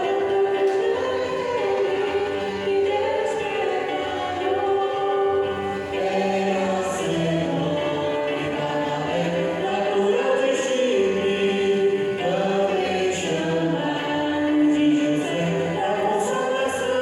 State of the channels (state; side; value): identical; both; correlation 1.00